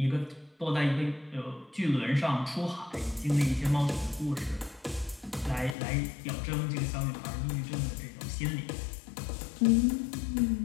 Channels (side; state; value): right; drops out; at 5.8 s